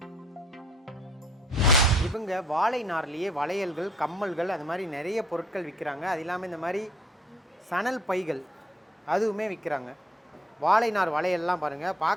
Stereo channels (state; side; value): normal; both; correlation 0.63